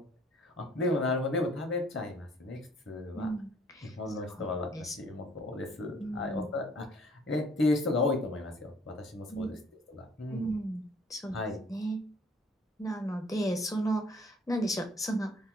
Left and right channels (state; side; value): normal; both; correlation 0.58